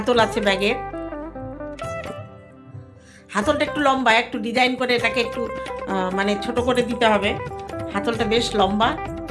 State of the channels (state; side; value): identical; both; correlation 1.00